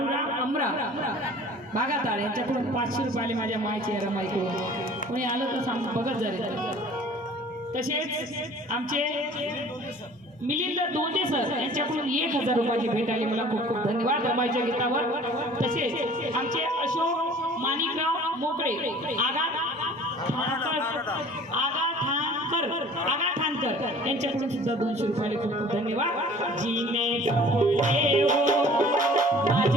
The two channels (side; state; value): both; normal; correlation 0.48